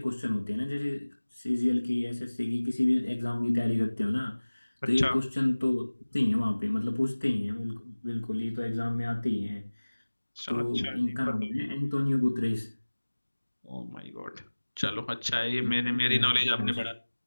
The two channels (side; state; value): both; inverted; correlation -1.00